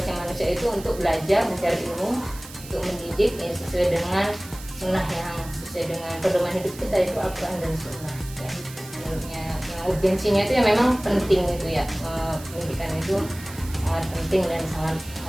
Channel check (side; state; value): right; noise; hiss, 16 dB below the sound